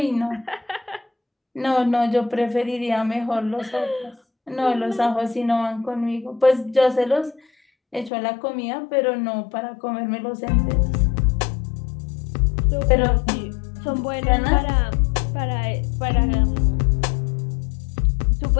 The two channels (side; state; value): right; drops out; at 8.1 s